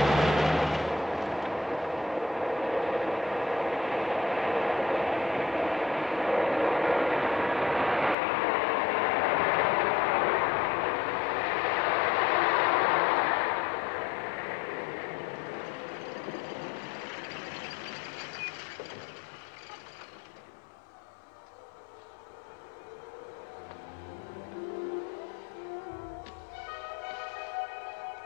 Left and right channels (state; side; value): drops out; right; at 8.2 s